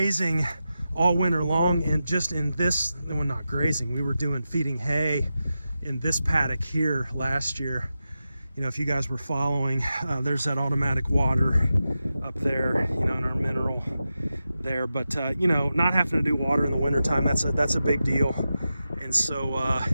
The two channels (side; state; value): both; inverted; correlation -0.91